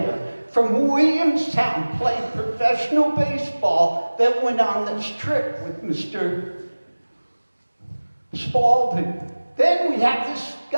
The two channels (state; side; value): inverted; both; correlation -1.00